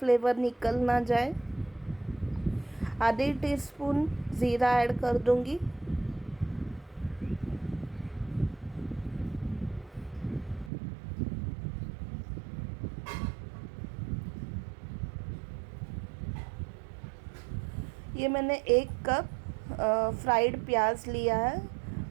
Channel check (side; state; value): left; drops out; at 10.7 s